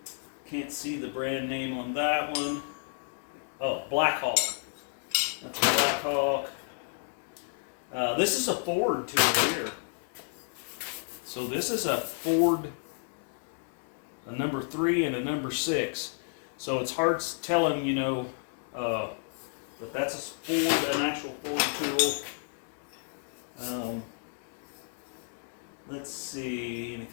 see the brand name on that one. Oh, Blackhawk. That's a Blackhawk. This is a Ford tool here. So this is a Ford. A number 3 and a number 6. So it's hard telling, you know, but that's a Ford, an actual Ford tool. Let's see,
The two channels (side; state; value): right; silent; 57 dB below the other